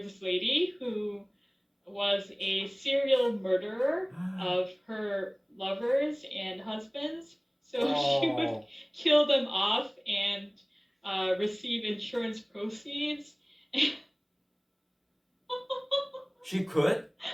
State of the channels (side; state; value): both; identical; correlation 1.00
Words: this lady who was a serial murderer of her lovers and husbands. So she would kill them off and receive insurance proceeds. She could?